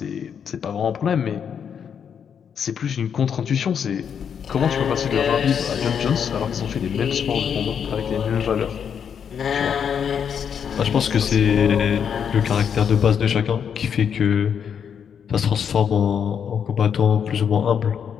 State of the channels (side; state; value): right; quieter; 7.6 dB